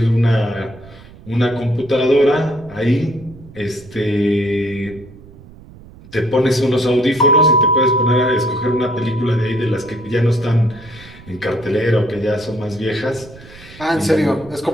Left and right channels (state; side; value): noise; right; rumble, 20 dB below the sound